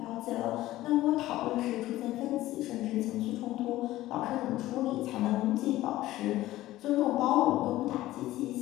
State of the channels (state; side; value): quieter; right; 15.9 dB